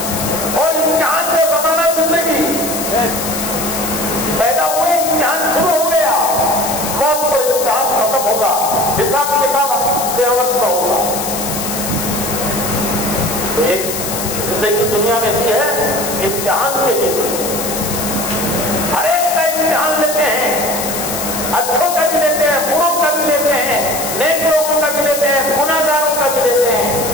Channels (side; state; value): left; noise; hiss, 5 dB below the sound